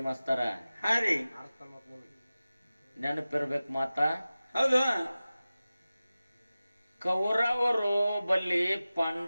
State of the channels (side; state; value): both; inverted; correlation -0.96